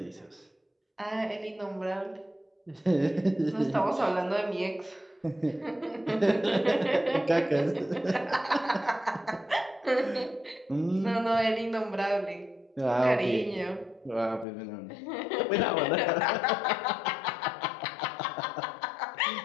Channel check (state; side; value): drops out; right; at 14.5 s